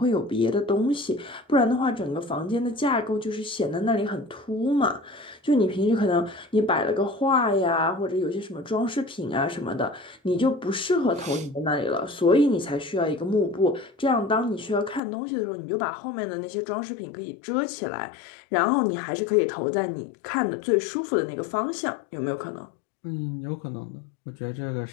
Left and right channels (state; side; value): drops out; right; at 15.0 s